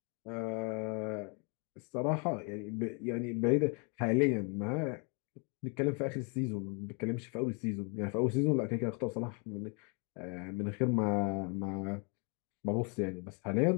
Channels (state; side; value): quieter; right; 36.0 dB